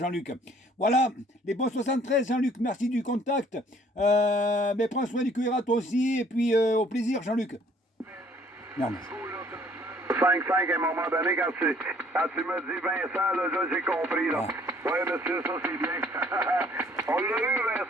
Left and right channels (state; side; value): normal; both; correlation 0.59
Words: Voilà, les bons 73, Jean-Luc. Merci du contact. Mais prends soin du QRA toi aussi. Et puis, au plaisir, Jean-Luc. Merde. 5-5 à un moment donné, quand tu me dis Vincent, là j'ai compris. Là. Ah. Oui, monsieur, ça c'est bien. On l'a eu,